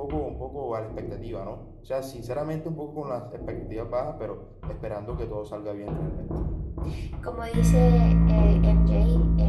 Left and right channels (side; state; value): both; identical; correlation 1.00